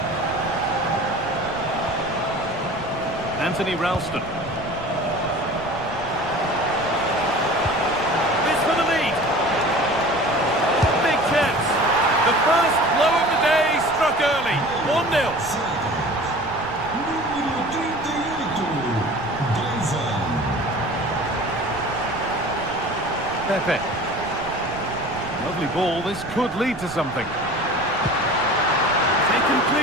Anthony Ralston. This for the lead. Big chance. The first blow of the day struck early. 1-0. Pepe. Lovely ball, this could lead to something. Taken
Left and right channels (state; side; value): noise; right; rumble, 16 dB below the sound